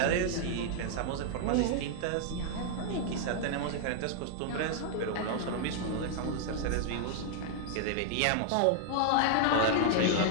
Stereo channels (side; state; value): both; different; correlation -0.01